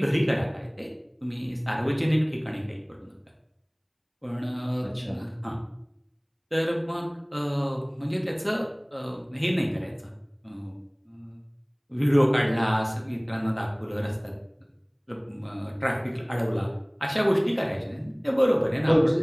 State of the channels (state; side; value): identical; both; correlation 1.00